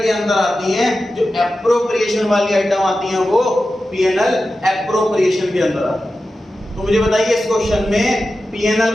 के अंदर आती हैं, जो एप्रोप्रिएशन वाली आइटम आती हैं वो पीएनएल एप्रोप्रिएशन के अंदर आती हैं। तो मुझे बताइए इस क्वेश्चन में पीएनएल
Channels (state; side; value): normal; both; correlation 0.93